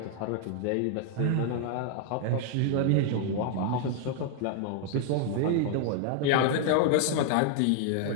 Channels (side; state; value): both; different; correlation 0.00